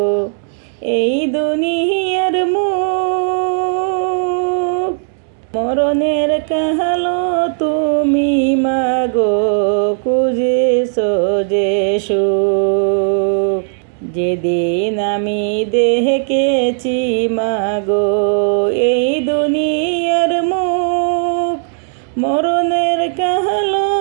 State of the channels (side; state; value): left; silent; digital silence